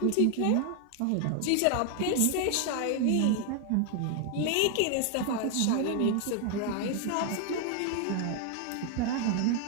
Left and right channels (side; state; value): both; different; correlation 0.00